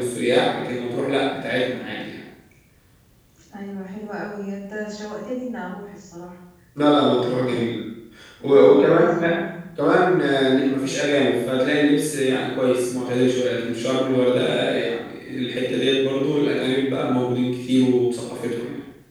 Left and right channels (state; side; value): identical; both; correlation 1.00